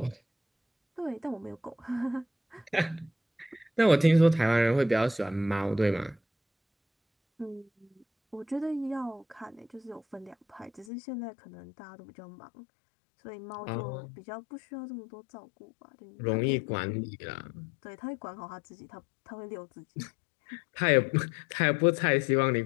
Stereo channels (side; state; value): right; drops out; at 10.9 s